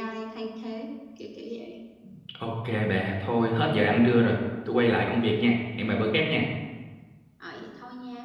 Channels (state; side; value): identical; both; correlation 1.00